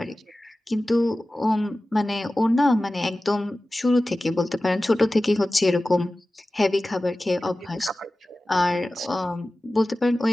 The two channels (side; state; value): both; normal; correlation 0.96